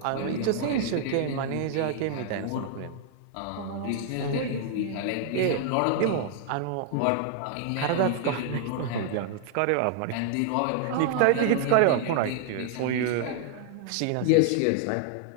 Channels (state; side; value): different; both; correlation 0.00